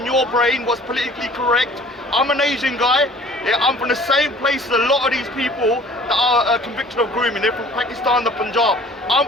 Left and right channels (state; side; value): normal; both; correlation 0.49